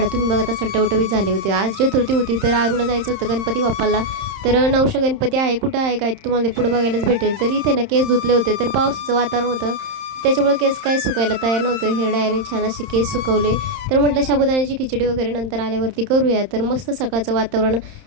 तुम्ही बघत असाल टवटवीत झाले होते. आज चतुर्थी होती, तर आरूला जायचं होतं गणपती बाप्पाला. तर नवशा गणपती आहे, कुठं आहे काय तुम्हाला पुढं बघायलाच भेटेल. तर इथे ना केस धुतले होते, तर पावसाचं वातावरण होतं, त्याच्यामुळे केस काय सुकायला तयार नव्हतं. हिरड्याने छान असे केस सुकवले. तर म्हटलं साबुदाण्याची खिचडी वगैरे नंतर आल्यावरती करूया. तर मस्त सकाळचं वातावरण.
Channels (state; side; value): late; left; 31 ms